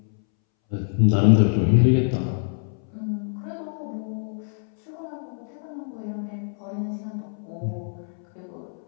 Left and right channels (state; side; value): silent; right; 62 dB below the other